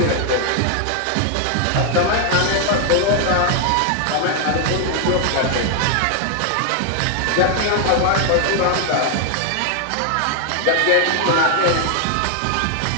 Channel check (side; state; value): both; different; correlation 0.00